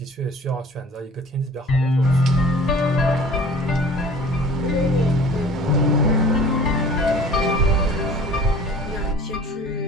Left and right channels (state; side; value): normal; both; correlation 0.46